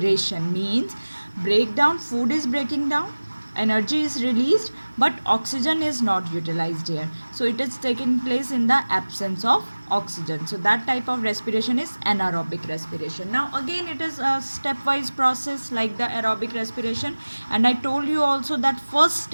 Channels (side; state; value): both; inverted; correlation -1.00